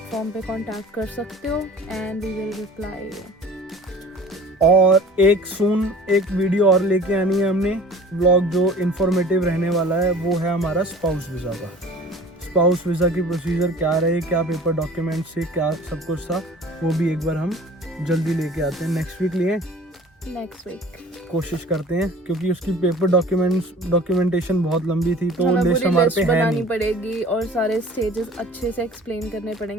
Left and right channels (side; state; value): both; normal; correlation 0.45